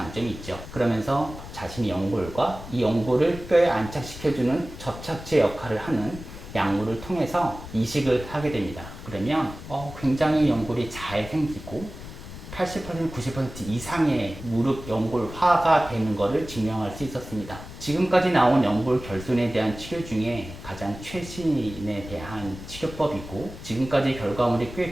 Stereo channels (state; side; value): noise; left; rumble, 13 dB below the sound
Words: 있죠. 그러면서 자신의 연골과 이 연골을 뼈에 안착시켜주는 접착제 역할을 하는 약물을 통해서 이식을 하게 됩니다. 그러면 굉장히 연골이 잘 생기고 80%, 90% 이상의 무릎 연골화가 되는 것을 증명할 수 있었습니다. 지금까지 나온 연골 결손에 대한 치료 중에 가장 최신에 대한 치료법이고, 지금까지 결과물이 꽤